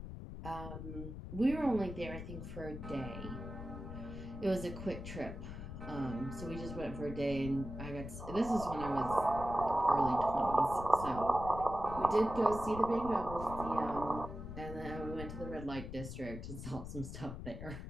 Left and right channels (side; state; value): left; noise; rumble, 9 dB below the sound